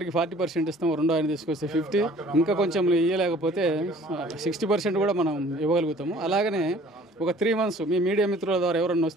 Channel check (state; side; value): normal; both; correlation 0.52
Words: 40% ఇస్తాము, 2వ ఆయన తీసుకొస్తే 50, ఇంకా కొంచెం ఇవ్వలేకపోతే 60% కూడా మనం ఇవ్వగలుగుతాము. అలాగనే ఒక 3 months మీ మీడియా మిత్రుల ద్వారా ఎవరన్నా